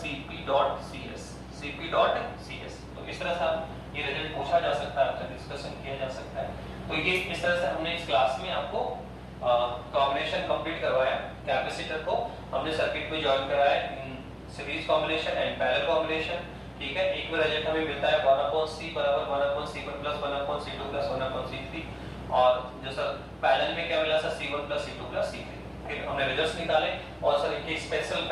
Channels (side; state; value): both; identical; correlation 1.00